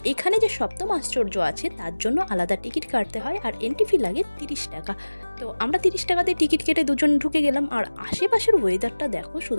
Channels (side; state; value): both; inverted; correlation -1.00